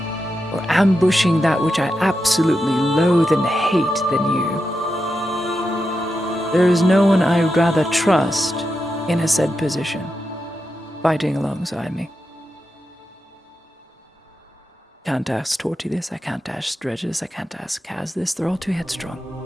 or ambushing that which I absolutely loathe and hate than you. There is no one I would rather trust in a said position, fighting alongside me. Can't ask Torty this, I can't ask Dredge this, I can't ask Kaz this, they're all too headstrong.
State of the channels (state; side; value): normal; both; correlation 0.88